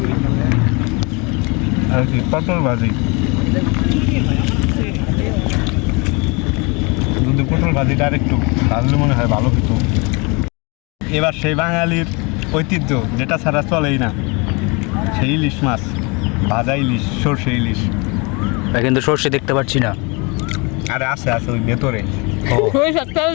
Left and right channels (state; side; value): quieter; right; 29.4 dB